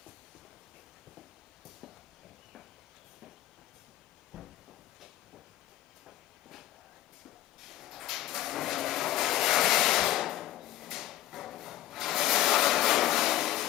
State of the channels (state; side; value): quieter; right; 14.4 dB